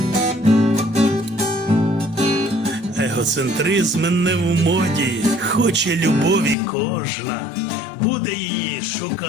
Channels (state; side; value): drops out; right; at 6.6 s